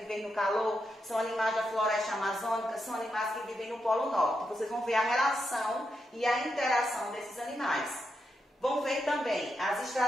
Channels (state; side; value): normal; both; correlation 0.84